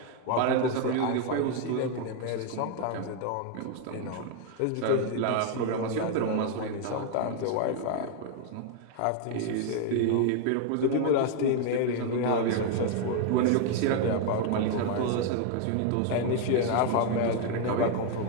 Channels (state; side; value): different; both; correlation 0.00